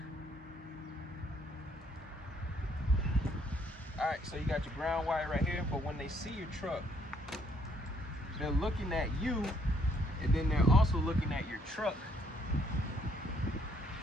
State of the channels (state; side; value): normal; both; correlation 0.67